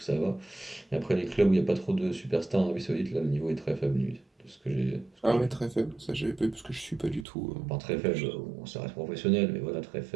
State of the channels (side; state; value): left; drops out; at 7.2 s